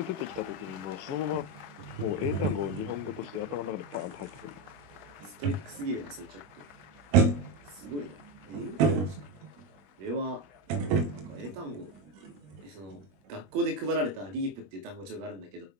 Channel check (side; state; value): left; late; 21 ms